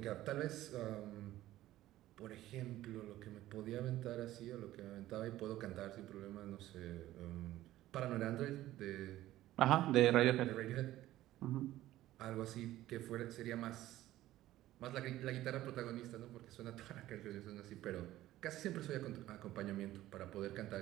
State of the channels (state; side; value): quieter; left; 14.9 dB